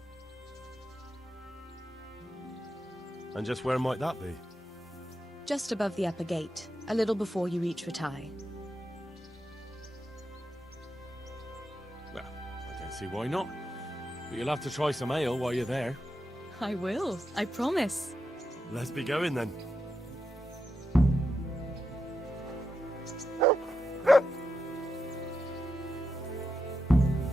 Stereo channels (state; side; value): normal; both; correlation 0.86